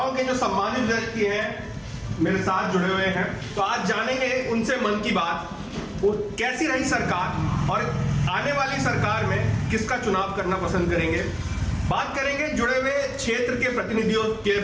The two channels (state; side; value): identical; both; correlation 1.00